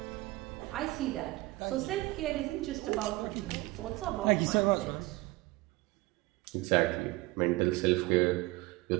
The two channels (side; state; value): left; quieter; 21.1 dB